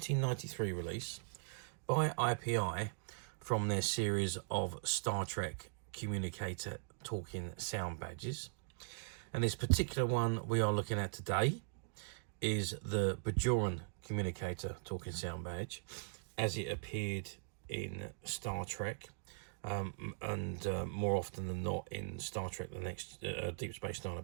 release by IPI from their series of Star Trek Communicator talking sound badges. And this particular one we are looking at today is the Bajoran Communicator talking sound badge as it appeared in Star Trek and more often than not in Star Trek the next Deep Space Nine, I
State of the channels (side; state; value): left; silent; digital silence